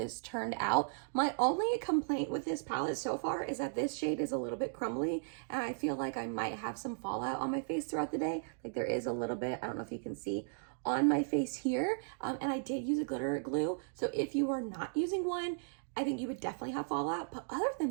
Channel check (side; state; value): left; silent; digital silence